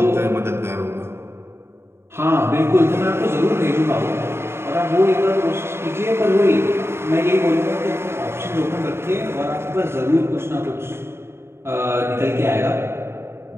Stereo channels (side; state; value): left; late; 0.12 ms